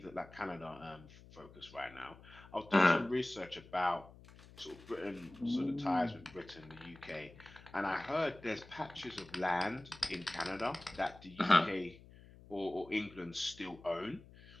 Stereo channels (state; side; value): noise; left; hum, 20 dB below the sound